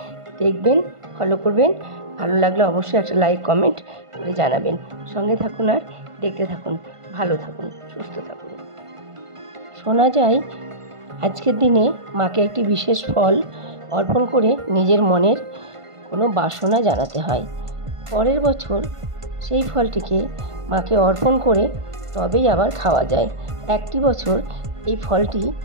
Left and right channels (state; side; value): late; left; 1.5 ms